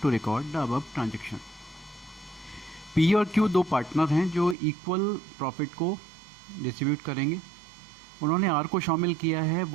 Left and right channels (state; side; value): drops out; left; at 4.5 s